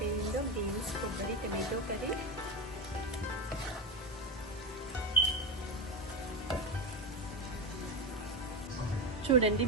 బీన్స్ కొబ్బరి టమాటో కర్రీ. చూడండి,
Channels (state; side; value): normal; both; correlation 0.17